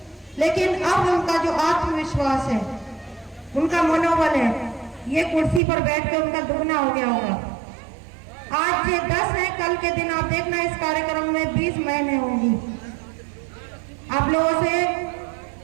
लेकिन अब उनका जो आत्मविश्वास है, उनका मनोबल है, ये कुर्सी पर बैठकर उनका दुगना हो गया होगा। आज ये 10 है, कल के दिन आप देखना इस कार्यक्रम में 20 महीने होंगी। आप लोगों से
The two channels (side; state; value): left; drops out; at 5.6 s